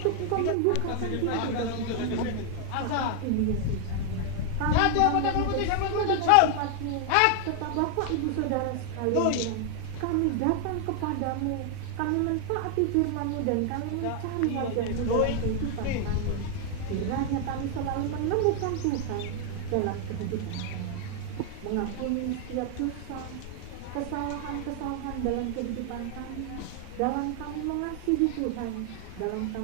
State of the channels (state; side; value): different; both; correlation 0.00